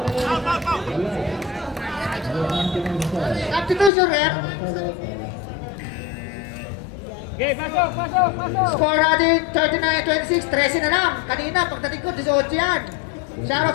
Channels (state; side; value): drops out; right; at 3.9 s